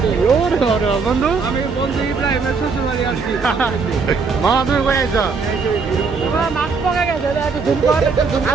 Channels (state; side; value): quieter; left; 4.8 dB